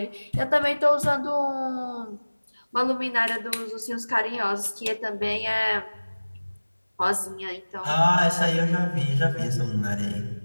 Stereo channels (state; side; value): inverted; both; correlation -1.00